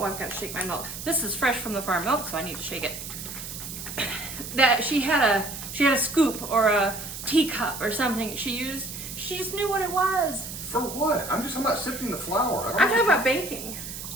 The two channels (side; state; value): right; noise; hiss, 9 dB below the sound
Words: I've got to shake my milk. This is fresh from the farm milk, so I need to shake it. That she had a scoop or a teacup or something she used. She just knew what it was. For what? I'm just talking about sifting the flour. I'm talking about baking.